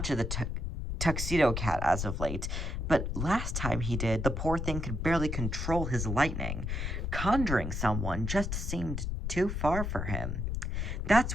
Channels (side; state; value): left; noise; rumble, 2 dB below the sound